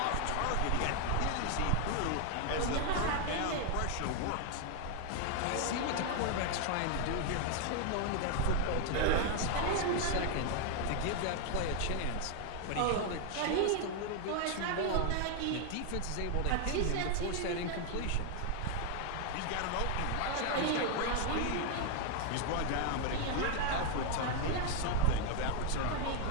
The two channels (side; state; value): both; different; correlation 0.00